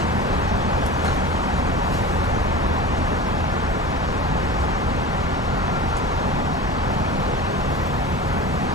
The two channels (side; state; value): both; normal; correlation 0.32